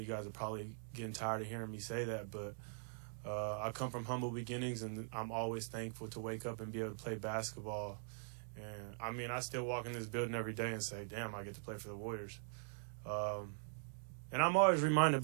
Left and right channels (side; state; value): left; silent; digital silence